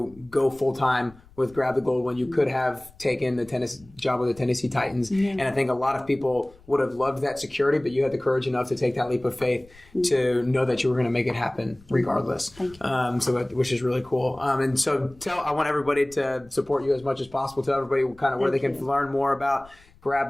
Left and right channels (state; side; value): noise; left; rumble, 26 dB below the sound